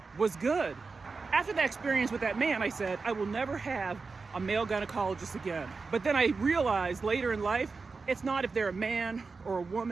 was good. After that experience with that man, I said, I will never have a male gynecologist again. But then I realized later in life, it's not if they're a man or a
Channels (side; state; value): left; quieter; 4.4 dB